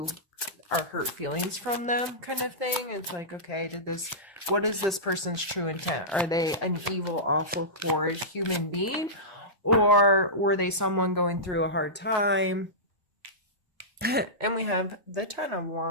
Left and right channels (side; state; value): both; normal; correlation -0.15